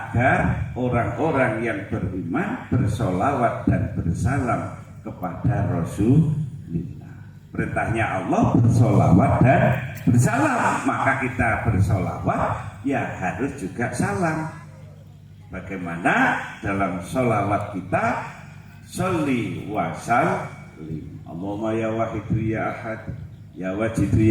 orang-orang yang beriman bersolawat dan bersalam kepada Rasulullah. Perintahnya Allah bersolawat dan bersalam, maka kita bersolawat ya harus juga salam. Bagaimana dalam solawat kita, sholli wa sallim, Allahumma ya wahidu ya ahad ya wajidu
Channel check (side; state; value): both; identical; correlation 1.00